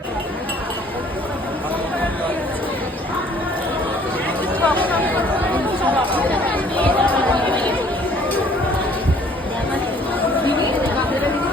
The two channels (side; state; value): both; normal; correlation 0.57